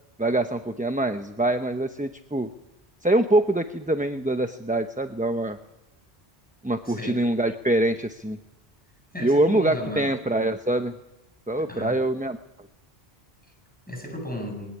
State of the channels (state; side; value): normal; both; correlation 0.56